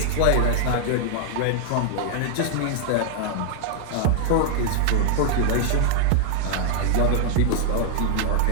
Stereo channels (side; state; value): both; different; correlation -0.01